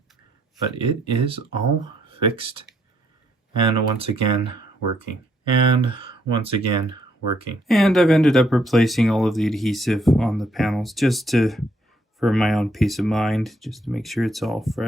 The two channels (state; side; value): normal; both; correlation 0.71